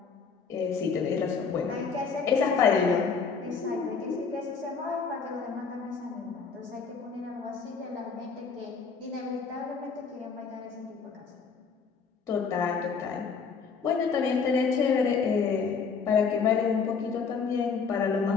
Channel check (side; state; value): right; quieter; 5.5 dB